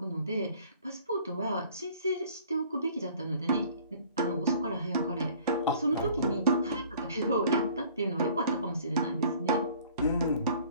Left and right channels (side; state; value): both; inverted; correlation -0.52